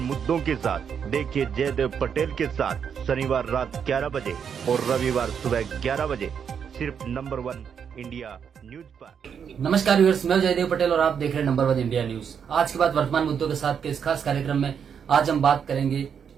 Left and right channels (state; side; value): quieter; left; 7.4 dB